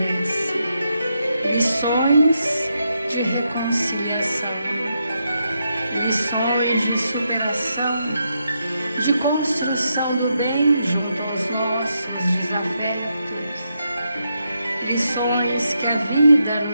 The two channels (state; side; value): inverted; both; correlation -0.82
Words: lições de reconciliação, lições de superação, de construção do bem junto aos nossos desafetos, lições que a vida